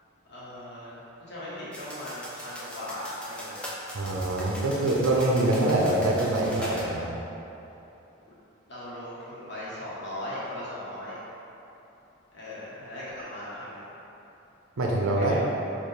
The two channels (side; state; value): both; normal; correlation 0.25